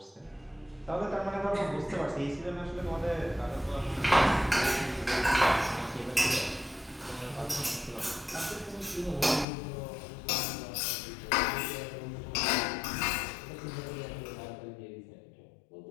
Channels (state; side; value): drops out; right; at 9.5 s